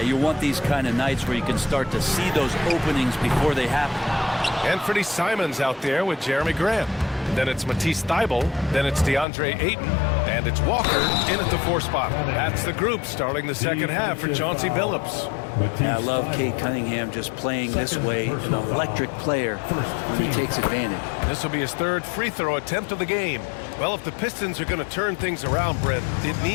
want these kind of nights where you can start to see those openings before they happen. Anthony Simons out there with Jeremy Grant. Then it's Matisse Thybulle. Then it's DeAndre Ayton. And it's Walker in at the 4 spot. That's the group starting the second half for Chauncey Billups. Batista. I love Cade Cunningham just playing this way, an electric player when he takes advantage. This will be his third free throw attempt of the game. Well, if the Pistons are going to turn things around, Brent, it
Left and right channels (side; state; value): right; drops out; at 9.2 s